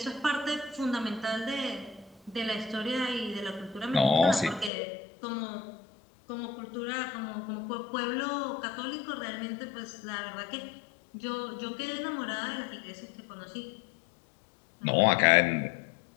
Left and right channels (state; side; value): drops out; right; at 4.7 s